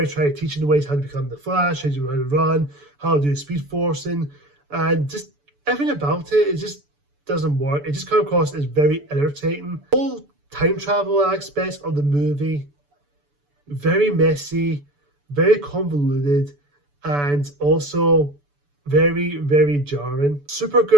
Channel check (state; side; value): late; left; 6.9 ms